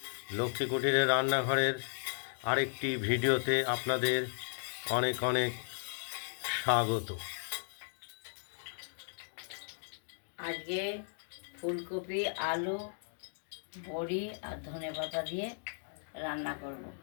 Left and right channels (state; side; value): silent; right; digital silence